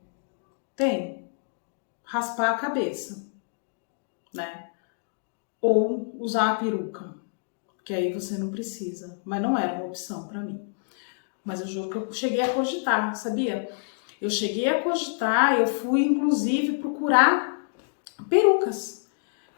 Tem raspar a cabeça, né? Ou usar a peruca, que aí você não precisa, mas não era uma opção para mim. Mas eu juro que eu cheguei a cogitar, sabia? Eu cheguei a cogitar, eu fui inclusive procurar perucas.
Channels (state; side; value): silent; right; digital silence